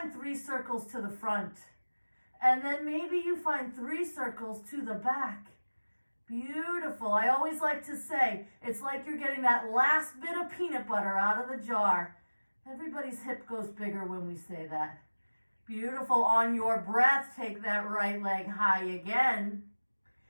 3 circles to the front. And then maybe you find 3 circles to the back. Beautiful. I always like to say, it's like you're getting that last bit of peanut butter out of the jar. Everybody's hip goes bigger when we say that. Beautiful. On your breath, take that right leg high again.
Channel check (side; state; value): both; inverted; correlation -1.00